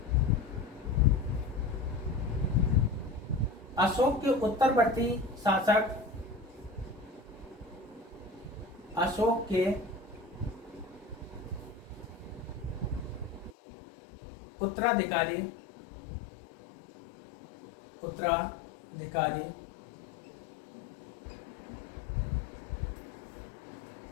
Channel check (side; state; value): right; drops out; at 13.6 s